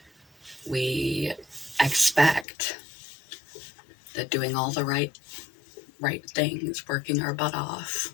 We expect that doing all the right things, working our butt off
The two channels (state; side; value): drops out; right; at 2.5 s